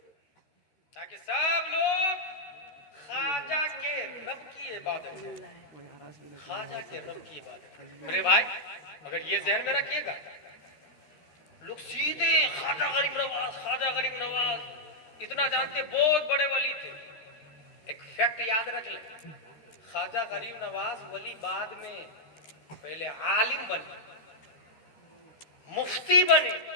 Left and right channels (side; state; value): right; late; 13 ms